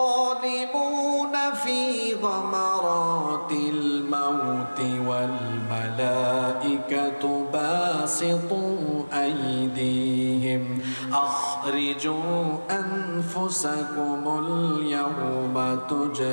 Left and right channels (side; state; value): both; inverted; correlation -1.00